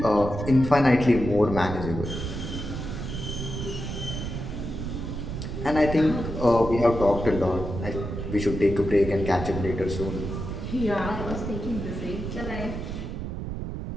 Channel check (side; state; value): right; noise; rumble, 5 dB below the sound